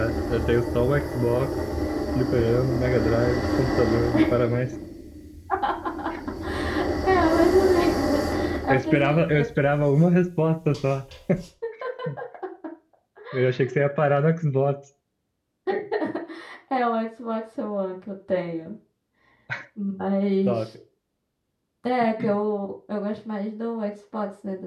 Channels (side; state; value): both; identical; correlation 1.00